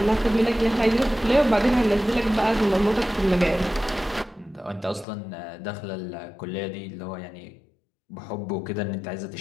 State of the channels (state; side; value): drops out; right; at 5.1 s